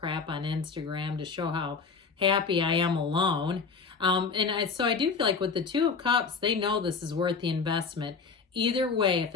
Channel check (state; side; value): quieter; right; 5.0 dB